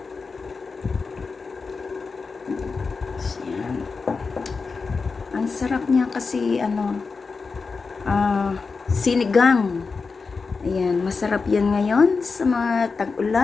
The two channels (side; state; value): right; quieter; 4.6 dB